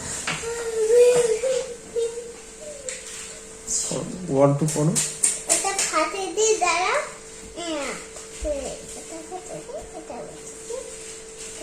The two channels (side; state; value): both; identical; correlation 1.00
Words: ওয়ান টু পড়ো।